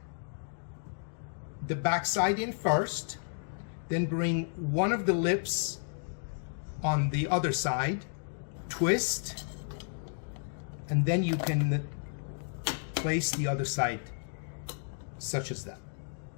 the back side in first, then bring one of the lips on the other side, twist, and then you can place the other side such as that.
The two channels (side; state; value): right; silent; digital silence